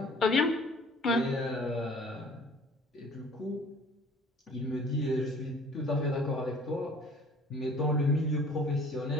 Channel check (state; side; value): normal; both; correlation 0.51